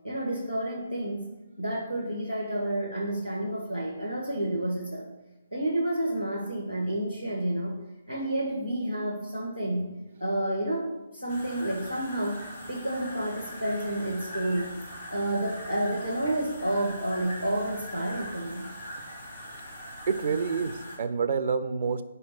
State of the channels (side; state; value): both; inverted; correlation -0.80